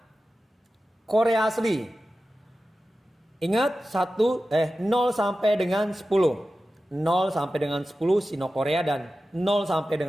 Korea asli. Ingat 0 sampai dengan 10. 0 sampai dengan 10 Sino Korea dan 0 sampai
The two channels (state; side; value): normal; both; correlation 0.94